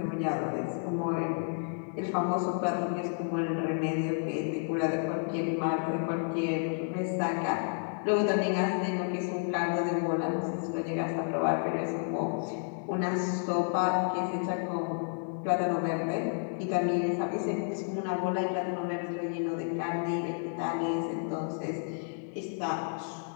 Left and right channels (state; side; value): silent; right; 57 dB below the other